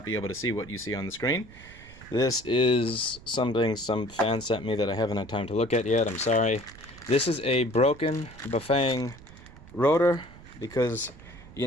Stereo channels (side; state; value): right; noise; rumble, 20 dB below the sound